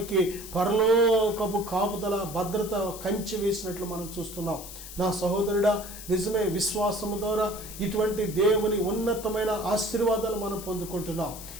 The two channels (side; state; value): left; noise; hiss, 12 dB below the sound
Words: పరలోకపు కాపుదల భద్రత కంచె వేసినట్లు మనం చూస్తున్నాం. నా సహోదరుడా, నిజమే, విశ్వాసము ద్వారా ఇటువంటి దేవుని ఉన్నతమైన ఆశీర్వాదాలు మనం పొందుకుంటున్నాం.